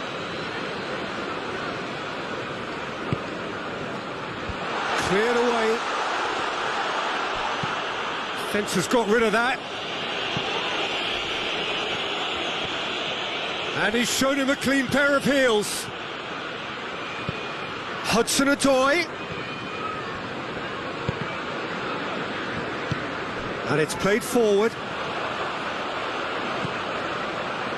Cleared away. Fence has got rid of that. And he's shown him a clean pair of heels. Hudson-Odoi. And it's played forward.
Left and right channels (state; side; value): identical; both; correlation 1.00